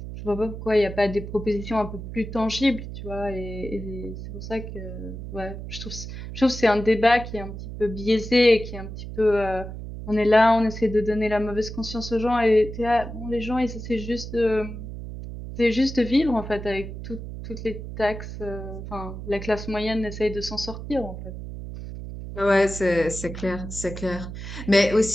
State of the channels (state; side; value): noise; right; hum, 9 dB below the sound